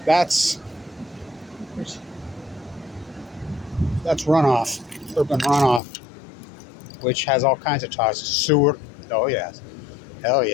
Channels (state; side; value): drops out; right; at 5.8 s